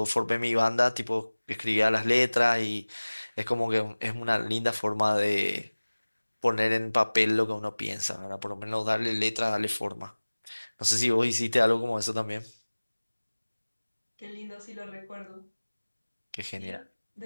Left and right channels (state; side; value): inverted; both; correlation -1.00